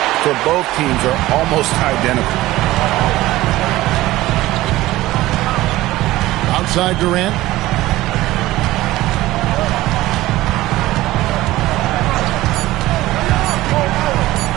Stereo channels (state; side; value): quieter; left; 17.1 dB